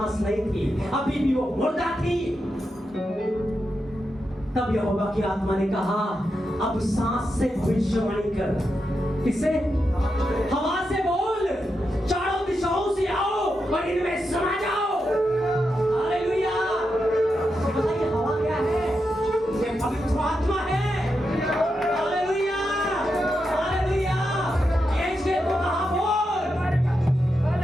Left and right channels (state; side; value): normal; both; correlation 0.86